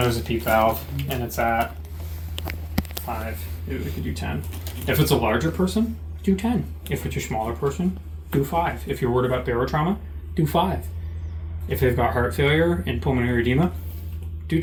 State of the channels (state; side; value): identical; both; correlation 1.00